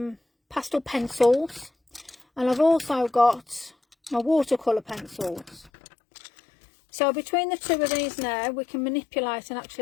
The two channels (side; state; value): right; drops out; at 5.7 s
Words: pastel pencils, and I've also got my watercolour pencils. So between the two of these now, we can manipulate, and